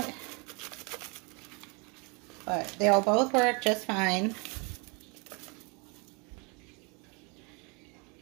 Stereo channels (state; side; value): quieter; left; 31.4 dB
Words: but they'll both work just fine.